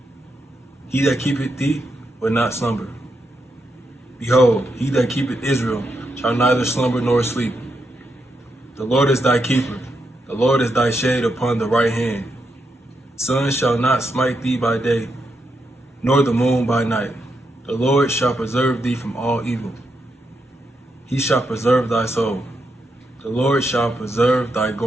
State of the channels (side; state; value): both; normal; correlation 0.82